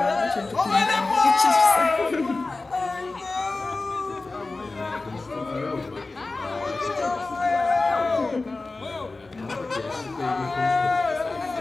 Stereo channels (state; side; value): quieter; right; 3.4 dB